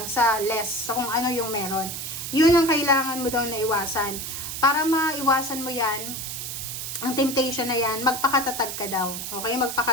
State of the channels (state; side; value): noise; right; hiss, 6 dB below the sound